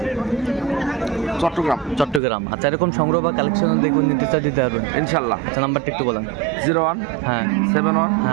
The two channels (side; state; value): left; drops out; at 2.2 s